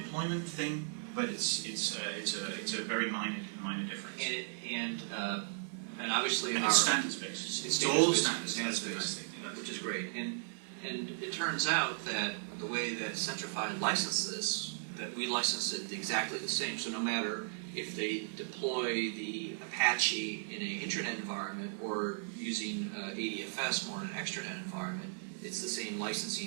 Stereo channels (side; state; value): left; silent; 54 dB below the other